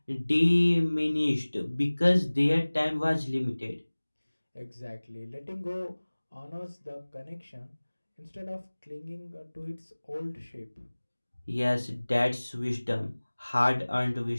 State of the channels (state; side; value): inverted; both; correlation -1.00